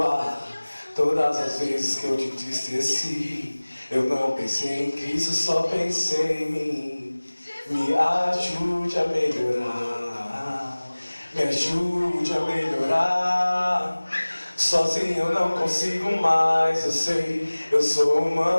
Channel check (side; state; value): both; inverted; correlation -1.00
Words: todas as vezes que eu te entristeci. Eu não pensei em Cristo, só pensei em mim. Me ajude a melhorar, me ajude a melhorar. Sozinho eu não consigo mais, eu sei, eu sou